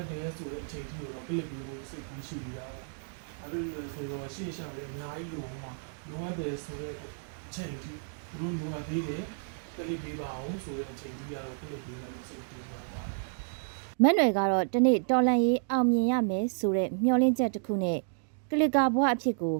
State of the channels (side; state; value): left; silent; digital silence